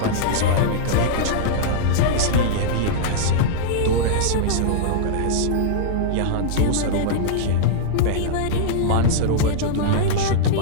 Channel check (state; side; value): different; both; correlation -0.02